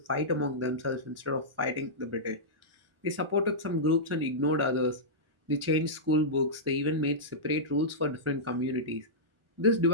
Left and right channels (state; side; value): late; left; 1.4 ms